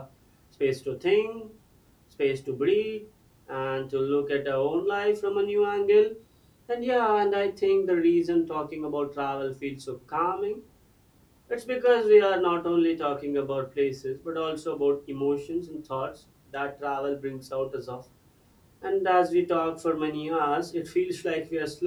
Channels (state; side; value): identical; both; correlation 1.00